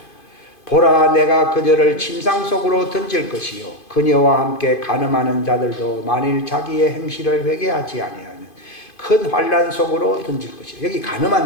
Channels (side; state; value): right; late; 2.5 ms